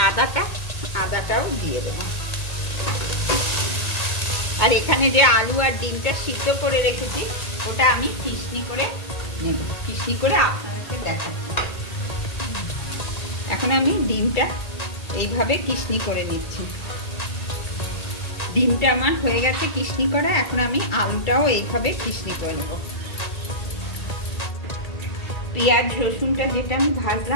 আদাটাও দিয়ে দেব। আর এখানে যে আলু আর ডিমটা সিদ্ধ করে রেখেছি ওটা আমি কিশনি করে নেব, কিশনি করে আপনাদেরকে দেখাচ্ছি। এখন আমি ডিমটা এইভাবে কিশনি করে নিচ্ছি। ডিমটা আমার হয়ে গেছে কিশনি করা, এখন আমি আলুটাও এইভাবে কিশনি করে নেব। পেঁয়াজ রসুনটা যেটা আমি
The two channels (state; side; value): late; right; 1.8 ms